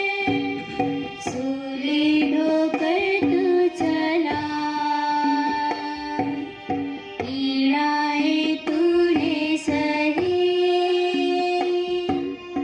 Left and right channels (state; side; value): identical; both; correlation 1.00